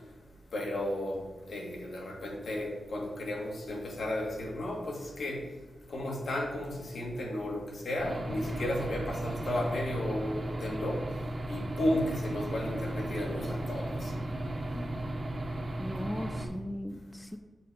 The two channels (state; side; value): normal; both; correlation 0.89